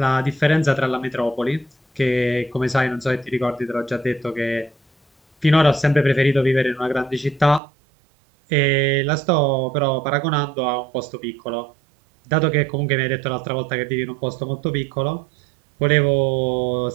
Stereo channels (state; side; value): drops out; left; at 7.6 s